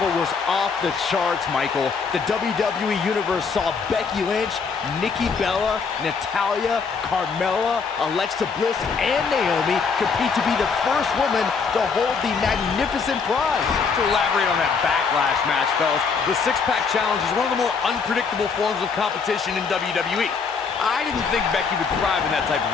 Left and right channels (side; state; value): right; quieter; 5.4 dB